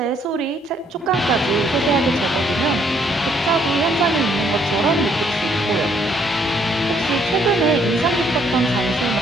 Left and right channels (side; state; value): both; normal; correlation 0.68